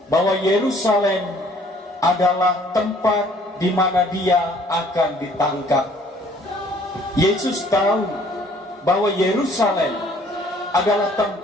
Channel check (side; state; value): both; normal; correlation 0.58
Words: bahwa Yerusalem adalah tempat di mana dia akan ditangkap. Yesus tahu bahwa Yerusalem adalah